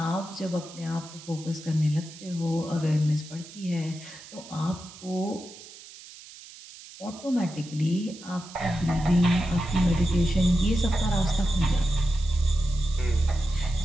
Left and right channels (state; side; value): noise; right; hiss, 17 dB below the sound